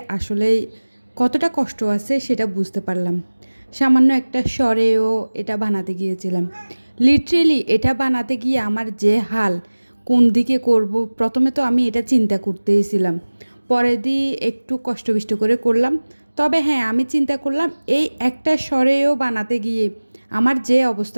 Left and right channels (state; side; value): inverted; both; correlation -1.00